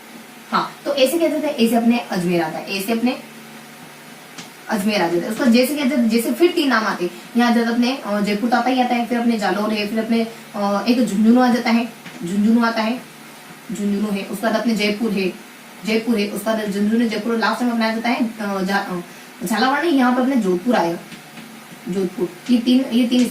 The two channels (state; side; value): identical; both; correlation 1.00